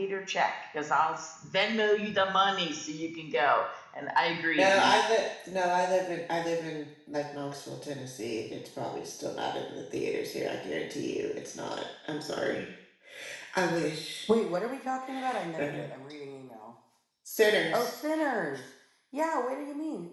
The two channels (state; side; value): identical; both; correlation 1.00